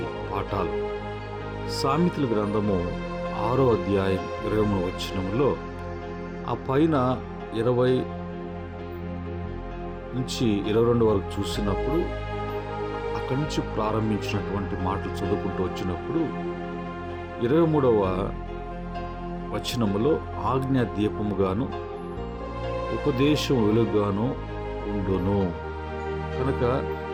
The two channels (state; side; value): identical; both; correlation 1.00